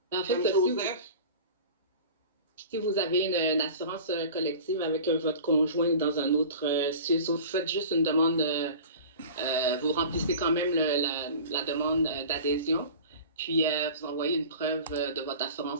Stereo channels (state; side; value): inverted; both; correlation -0.39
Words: En fait, si vous avez une assurance collective avec votre conjoint dans un autre, si vous faites juste une demande, vous remplissez quand même la demande d'adhésion, puis vous envoyez une preuve de votre